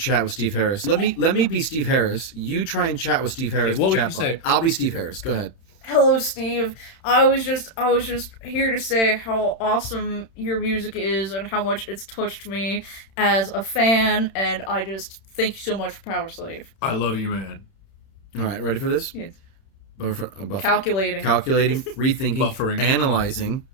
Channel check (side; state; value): right; late; 31 ms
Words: with Steve Harris. Let me be Steve Harris. You try and chat with Steve Harris. Hey, what would you say? I'll be Steve Harris. Go ahead. Hello, Steve. I was just here to say how awesome your music is and how much it's touched me as a fan, and I just thank you so much for Power Slave. I love you, man. All right, ready for this? Yes. Calculating, rethinking, buffering, analyzing.